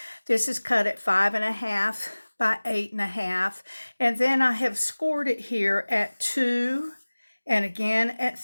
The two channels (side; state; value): both; inverted; correlation -1.00